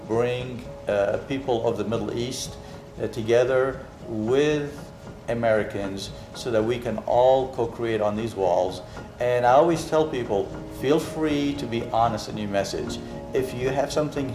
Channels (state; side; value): identical; both; correlation 1.00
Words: people of the Middle East together with Americans so that we can all co-create on these walls. And I always tell people, feel free to be honest in your message. If you have something